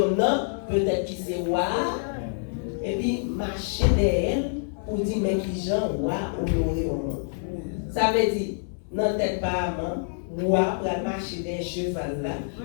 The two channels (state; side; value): silent; right; 61 dB below the other